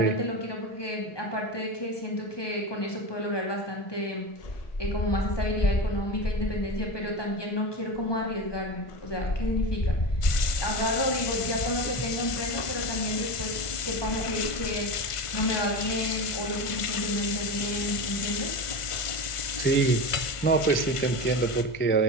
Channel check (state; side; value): late; right; 1.5 ms